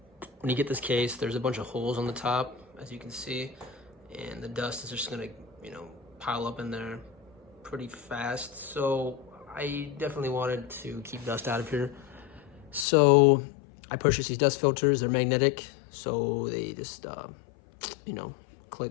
you get this case, there's a bunch of holes on the top, as you can see, and the dust is just gonna pile up in there pretty fast. So I definitely wanted to keep dust out of here, so I purchased these dust filters. They're magnetic, so they just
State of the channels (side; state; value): right; drops out; at 12.9 s